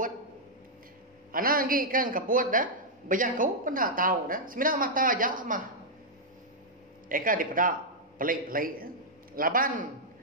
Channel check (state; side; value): normal; both; correlation -0.06